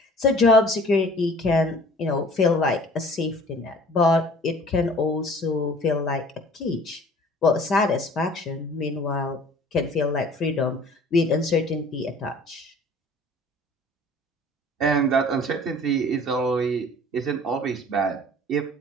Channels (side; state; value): both; normal; correlation 0.49